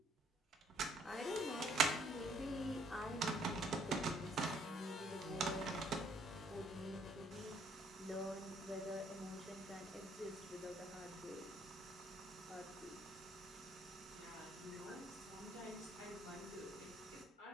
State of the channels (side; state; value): both; normal; correlation 0.65